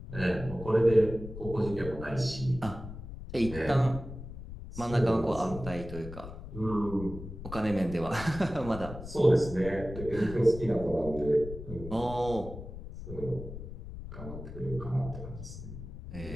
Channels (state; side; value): noise; left; rumble, 11 dB below the sound